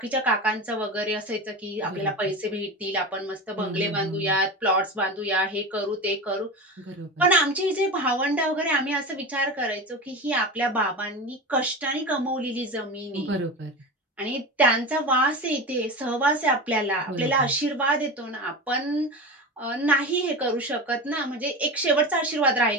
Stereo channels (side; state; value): both; normal; correlation 0.26